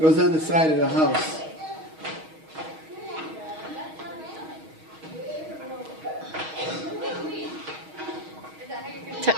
on the side of the house.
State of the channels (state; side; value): late; left; 6.3 ms